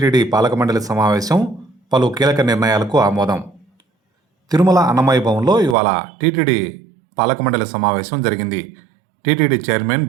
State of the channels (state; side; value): drops out; left; at 5.8 s